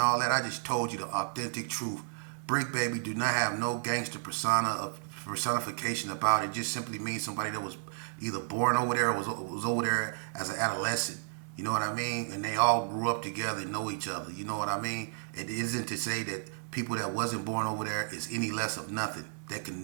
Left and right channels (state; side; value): silent; left; digital silence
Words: that, I just told you the authentic truth. Brick Baby do not have no gangster persona of personification about it. Just simply means somebody that was either born over there or was over there as an adolescent. You know what I mean? And they all grew up together and know each other. You know what I mean? It isn't to say that people that wasn't born over there is any less of nothing. That